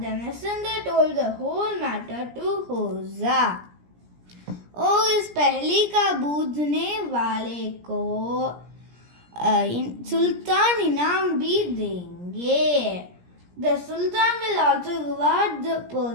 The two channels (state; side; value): late; left; 17 ms